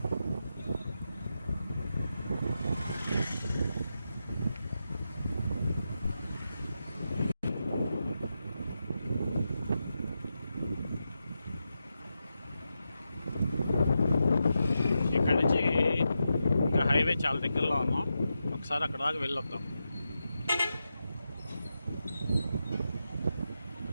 హైవే చాలా దగ్గరలో ఉన్నాం. ఒకసారి అక్కడ దాకా వెళ్ళొద్దాం.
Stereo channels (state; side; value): inverted; both; correlation -0.88